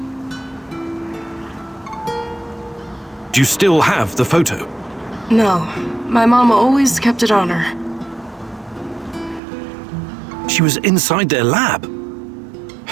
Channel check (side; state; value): left; drops out; at 9.4 s